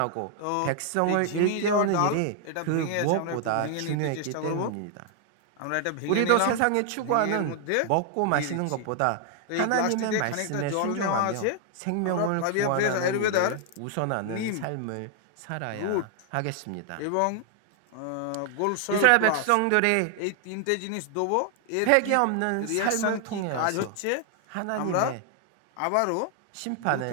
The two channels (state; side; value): different; both; correlation 0.00